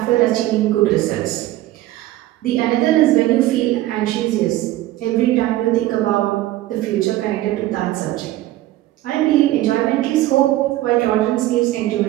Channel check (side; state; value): left; quieter; 15.6 dB